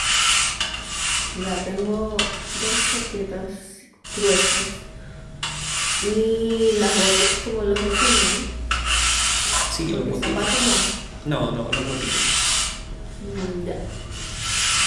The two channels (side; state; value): both; identical; correlation 1.00